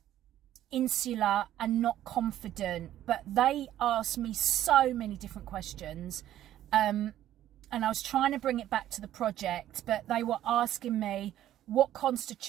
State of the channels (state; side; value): quieter; left; 12.5 dB